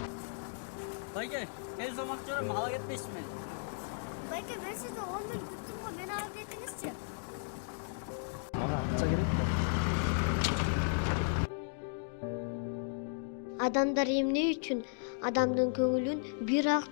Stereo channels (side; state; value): right; silent; digital silence